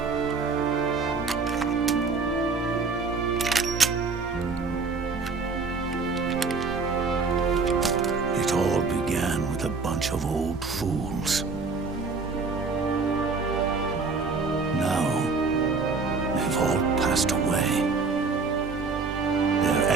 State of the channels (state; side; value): quieter; left; 4.4 dB